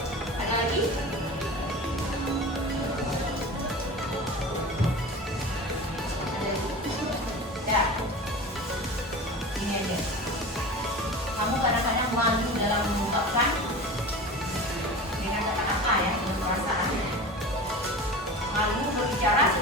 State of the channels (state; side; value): normal; both; correlation 0.33